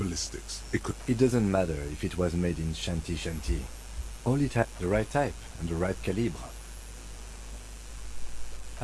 it could... It doesn't matter if it was made in Shanty. All it had the right type and the right calibre.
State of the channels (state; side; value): identical; both; correlation 1.00